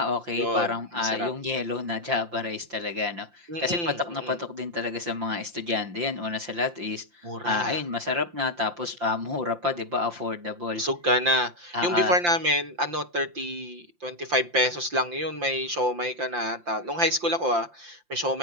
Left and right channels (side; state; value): left; late; 5.8 ms